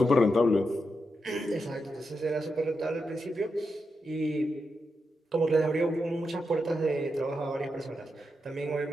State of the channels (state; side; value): normal; both; correlation 0.86